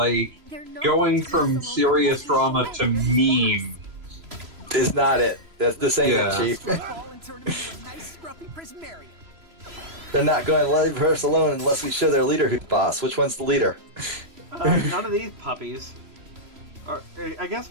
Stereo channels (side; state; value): left; late; 3.0 ms